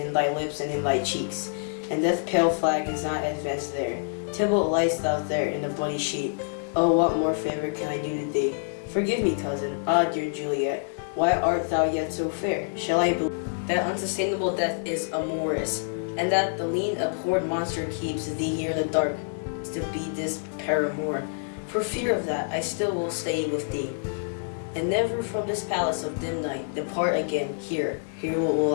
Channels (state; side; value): silent; right; digital silence